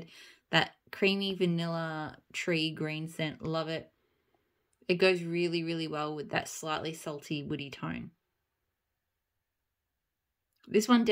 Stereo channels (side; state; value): both; identical; correlation 1.00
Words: that creamy vanilla tree green scent, love it. It goes really, really well with that slightly salty woody tone. This one